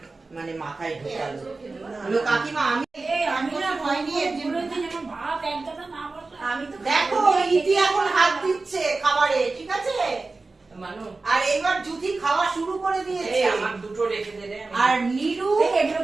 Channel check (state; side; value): quieter; left; 3.6 dB